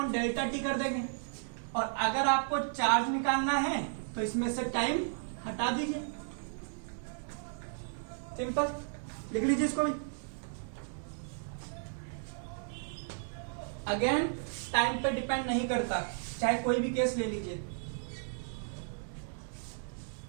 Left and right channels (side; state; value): left; silent; digital silence